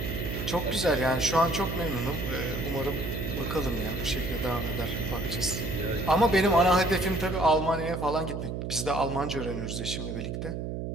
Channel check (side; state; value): right; noise; hum, 4 dB below the sound